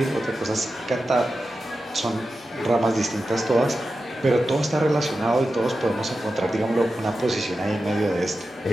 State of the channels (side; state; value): both; normal; correlation 0.91